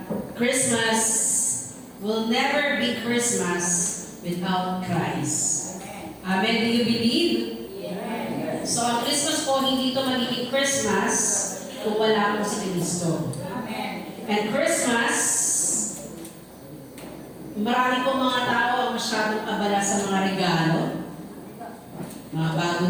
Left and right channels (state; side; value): identical; both; correlation 1.00